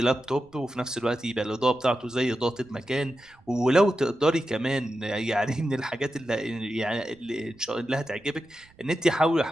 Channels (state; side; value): noise; right; rumble, 29 dB below the sound